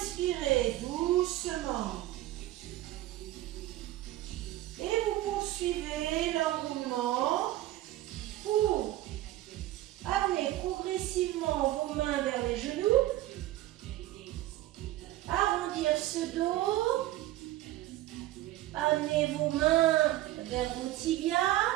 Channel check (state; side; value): quieter; left; 15.4 dB